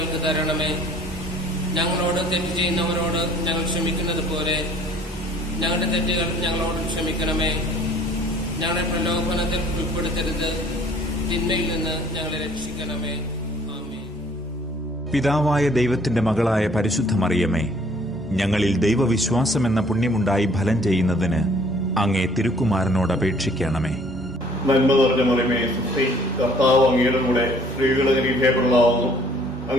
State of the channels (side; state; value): both; normal; correlation 0.57